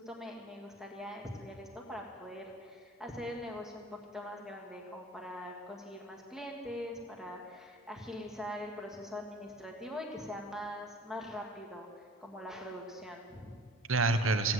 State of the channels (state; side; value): normal; both; correlation 0.46